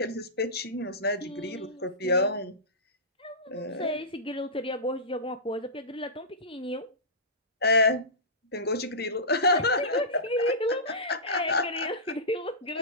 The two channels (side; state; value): both; normal; correlation -0.20